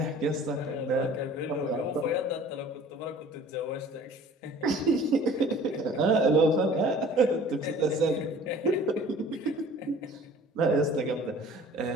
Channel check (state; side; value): normal; both; correlation 0.48